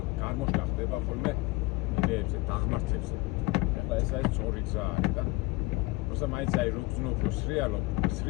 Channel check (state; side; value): quieter; right; 22.2 dB